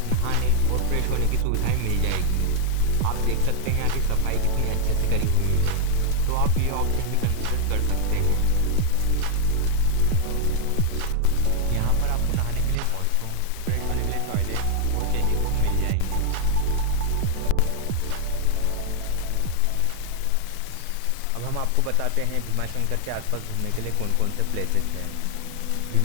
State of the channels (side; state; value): both; different; correlation 0.00